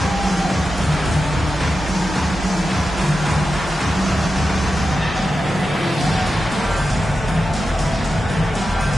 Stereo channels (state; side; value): normal; both; correlation 0.91